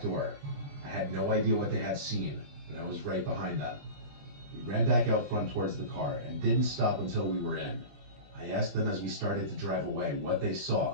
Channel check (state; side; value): late; left; 20 ms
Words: door. I had no idea what they had seen, but I was right behind them. We ran back out front towards the car and didn't stop until we were in. I asked them as we started to drive away what they